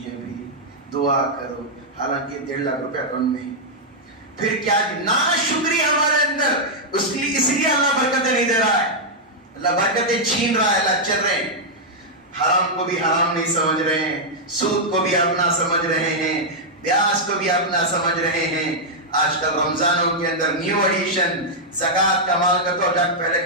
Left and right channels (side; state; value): both; normal; correlation -0.05